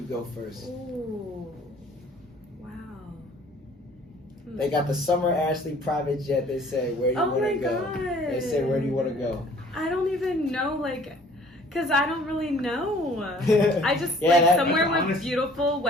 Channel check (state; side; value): normal; both; correlation 0.54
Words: go first? Ooh. Wow. They got the Summer Ashley private jet. They say, where do you Oh want my to go? God. They say, where do you want to go? I don't even know, because I don't really know. I just, Yeah, somewhere that's with honest. beautiful